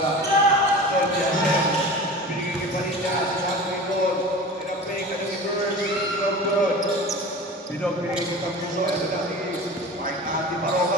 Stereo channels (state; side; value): normal; both; correlation 0.35